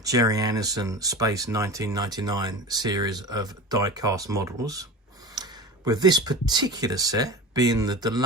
Gerry Andersons Space 1999 series of die-cast models, with this particular set being the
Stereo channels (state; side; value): normal; both; correlation 0.31